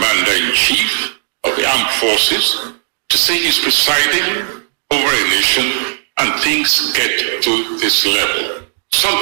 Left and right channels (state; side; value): silent; left; digital silence